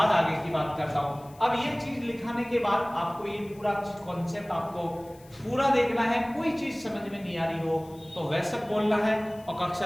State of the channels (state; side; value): noise; left; hiss, 26 dB below the sound